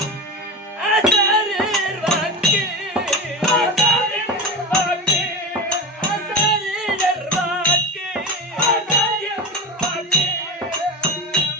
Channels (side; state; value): both; normal; correlation 0.24